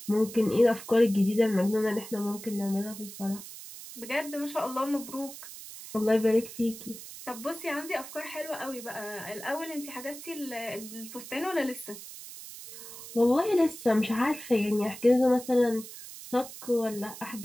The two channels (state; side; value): noise; right; hiss, 13 dB below the sound